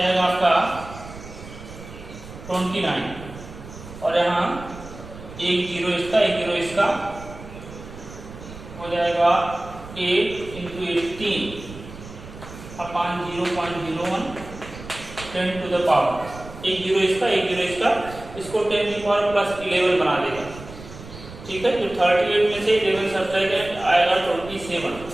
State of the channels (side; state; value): right; noise; rumble, 15 dB below the sound